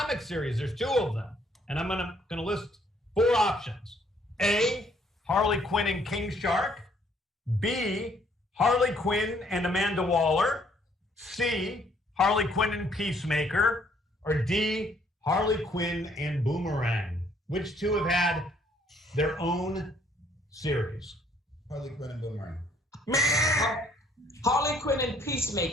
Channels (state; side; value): normal; both; correlation 0.65